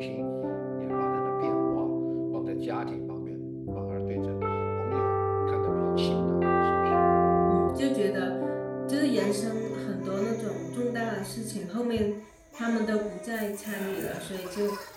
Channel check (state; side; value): identical; both; correlation 1.00